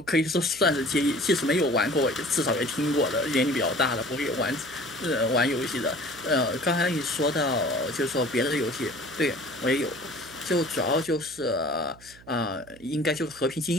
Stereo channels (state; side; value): noise; right; hum, 23 dB below the sound